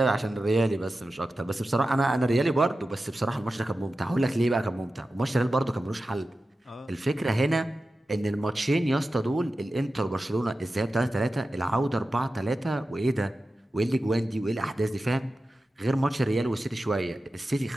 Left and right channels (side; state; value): both; normal; correlation 0.93